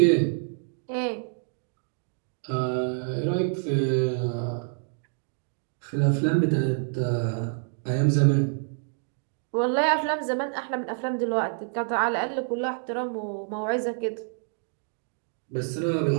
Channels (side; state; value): left; silent; 60 dB below the other